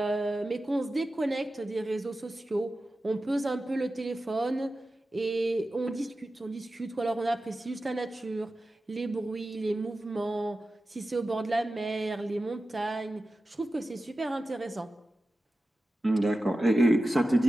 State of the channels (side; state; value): both; normal; correlation 0.94